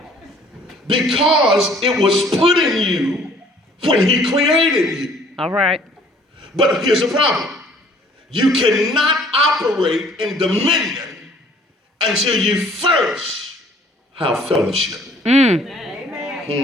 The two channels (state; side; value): normal; both; correlation 0.56